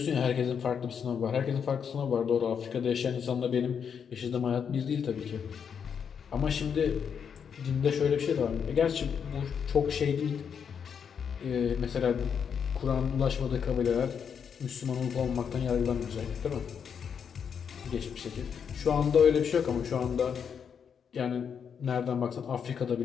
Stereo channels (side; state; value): right; quieter; 7.2 dB